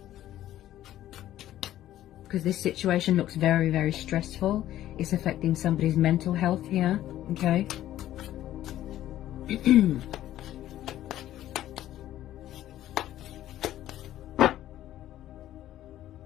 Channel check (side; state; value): right; quieter; 13.1 dB